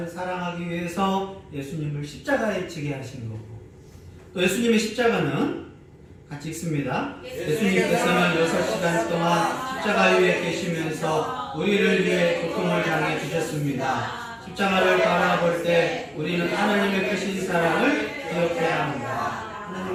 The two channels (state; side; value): identical; both; correlation 1.00